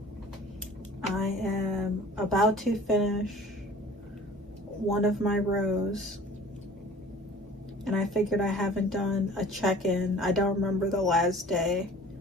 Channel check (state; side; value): normal; both; correlation 0.47